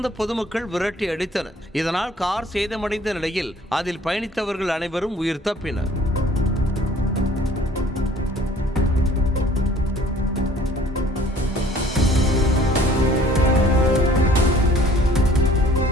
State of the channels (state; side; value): normal; both; correlation 0.54